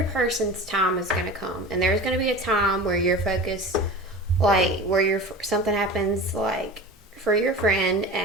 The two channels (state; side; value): normal; both; correlation 0.33